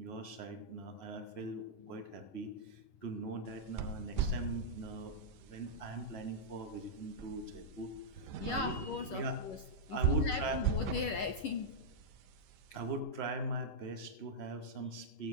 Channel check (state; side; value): late; right; 11 ms